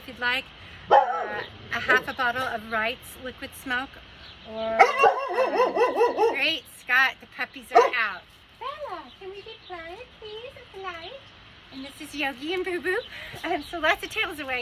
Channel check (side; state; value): both; identical; correlation 1.00